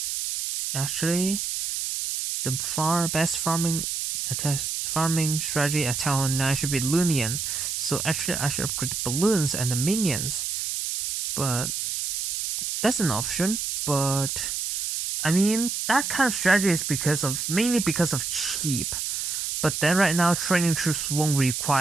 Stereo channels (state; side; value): noise; right; hiss, 2 dB below the sound